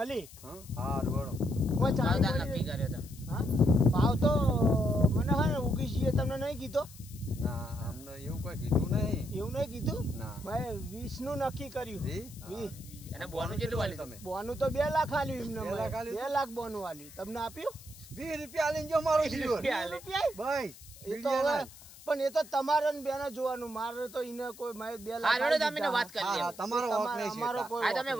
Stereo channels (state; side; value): noise; left; hiss, 19 dB below the sound